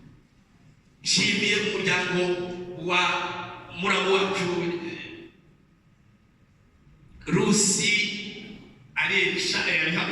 Nshimiye umuryango wa muramu wacu Rusi Aresha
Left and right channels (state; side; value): identical; both; correlation 1.00